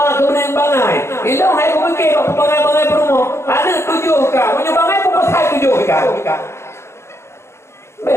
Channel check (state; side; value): late; right; 0.13 ms